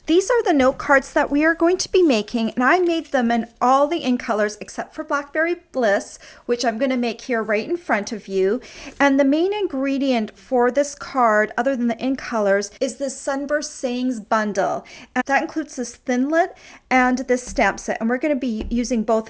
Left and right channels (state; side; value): identical; both; correlation 1.00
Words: These are the note cards that we are going to be making, and I made them in all the in colors except for Blackberry Bliss, which I'm going to make here right in front of you. And the main ingredient for this card, other than the in colors, is this Sunburst Sayings bundle. And that includes this Thinlit and this stamp set, and we're going to be using both